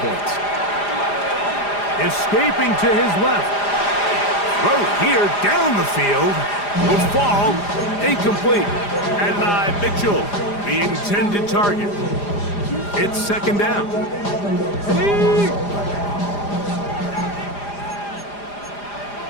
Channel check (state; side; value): late; right; 4.9 ms